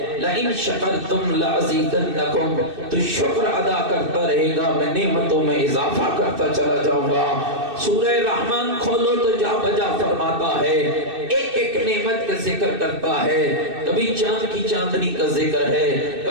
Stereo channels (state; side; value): late; left; 2.6 ms